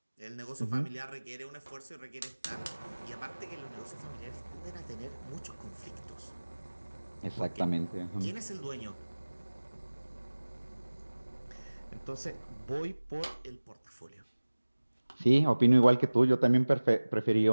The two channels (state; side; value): inverted; both; correlation -1.00